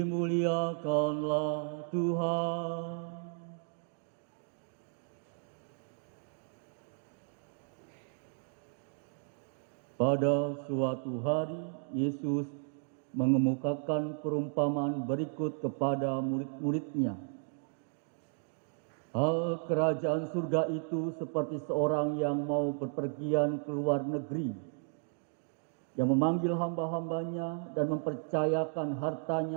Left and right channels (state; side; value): silent; left; 55 dB below the other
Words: Tuhan. Pada suatu hari, Yesus mengemukakan perumpamaan berikut kepada murid-muridnya. Hal kerajaan surga itu seperti seorang yang mau berpergian ke luar negeri, yang memanggil hamba-hambanya dan mempercayakan